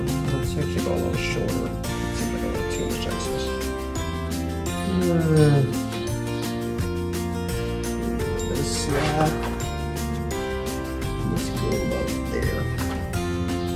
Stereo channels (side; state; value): both; identical; correlation 1.00